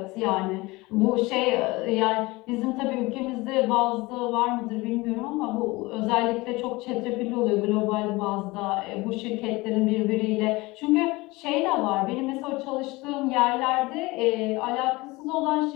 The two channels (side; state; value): right; quieter; 22.3 dB